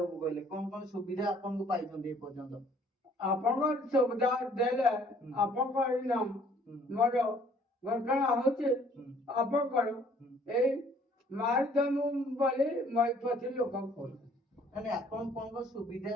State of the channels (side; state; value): both; normal; correlation 0.59